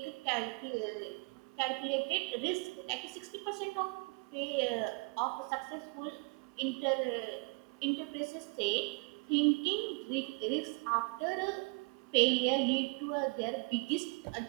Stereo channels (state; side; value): quieter; left; 31.8 dB